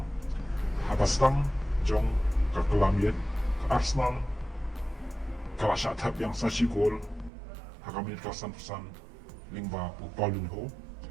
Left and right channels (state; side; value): drops out; left; at 7.3 s